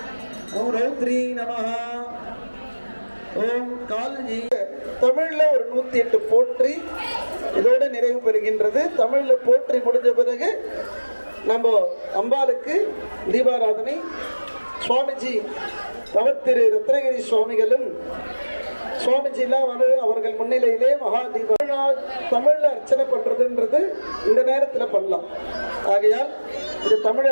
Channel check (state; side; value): inverted; both; correlation -1.00